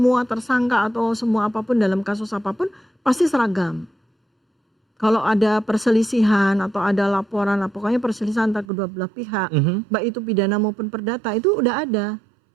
tersangka atau semua apapun dalam kasus apapun pasti seragam. Kalau ada perselisihan atau ada laporan, pokoknya perselisihan antara kedua belah pihak, baik itu pidana maupun perdata, itu udah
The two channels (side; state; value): left; drops out; at 8.7 s